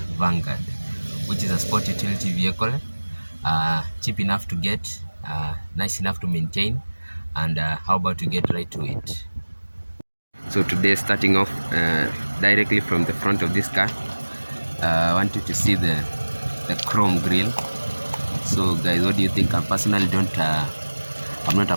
Vanguard, which is a sport utility vehicle, cheap enough to get, nice enough to maintain, and how about to get right to it. So today, starting off directly from the front of this car, I want you to see the chrome grille. So guys, what do you think? I personally don't I'm not a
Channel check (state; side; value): inverted; both; correlation -1.00